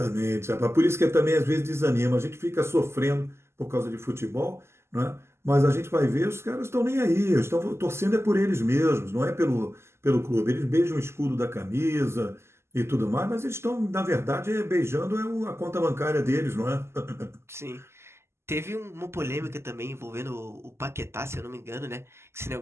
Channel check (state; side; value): late; left; 0.12 ms